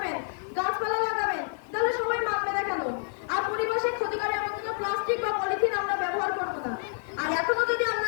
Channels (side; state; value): right; silent; digital silence